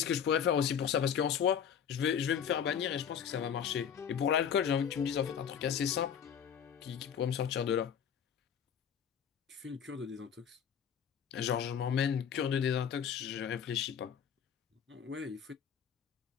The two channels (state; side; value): quieter; right; 8.1 dB